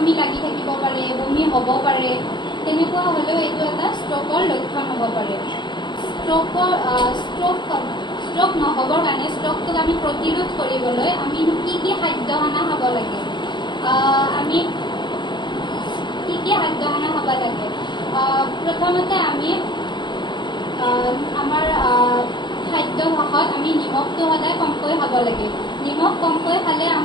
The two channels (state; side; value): late; right; 0.22 ms